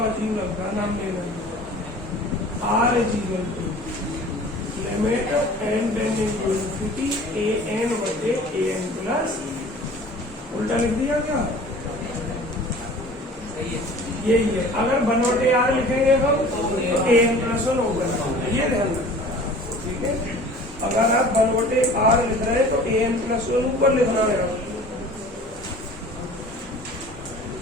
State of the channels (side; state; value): both; normal; correlation 0.45